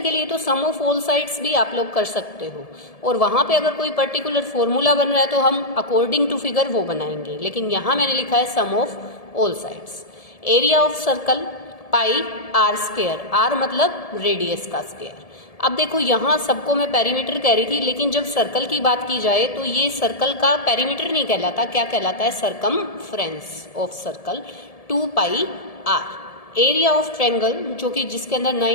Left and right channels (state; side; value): late; right; 1.7 ms